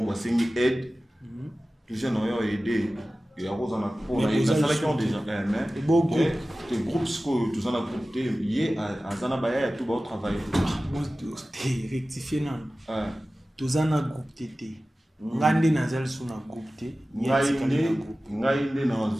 va signer aide les gens ont aidé et à cause pour la salle qui ont déjà mais beau groupe des groupes que tous en a groupé hier à Zanabaya tout va travailler rectifier non tous en a groupe tété ngande nazal sur na groupe té ngainde na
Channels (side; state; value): both; normal; correlation 0.96